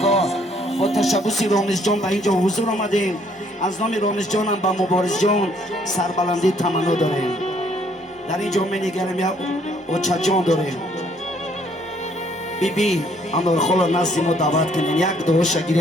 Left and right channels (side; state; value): both; normal; correlation 0.65